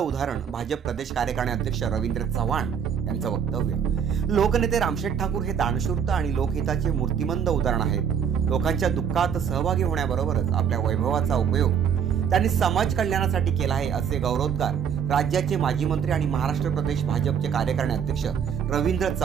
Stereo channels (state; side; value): quieter; left; 7.7 dB